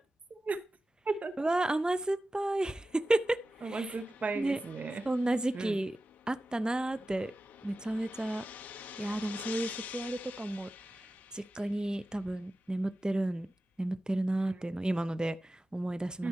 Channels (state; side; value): normal; both; correlation 0.94